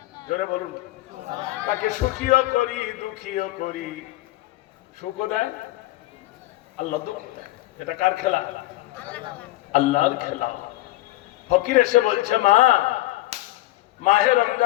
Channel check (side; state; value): right; quieter; 18.0 dB